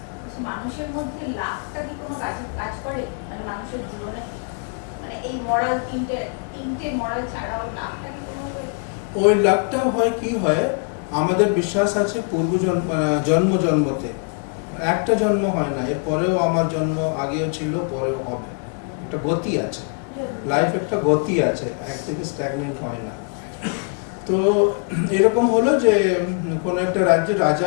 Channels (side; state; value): right; quieter; 37.8 dB